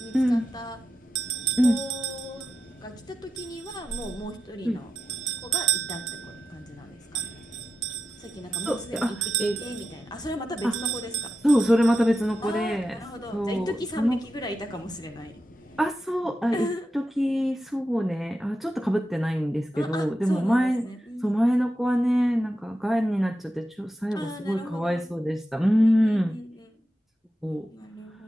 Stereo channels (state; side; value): normal; both; correlation 0.89